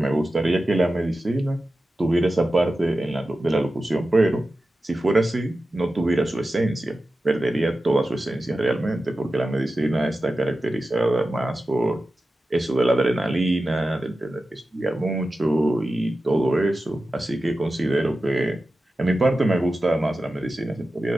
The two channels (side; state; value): both; normal; correlation 0.93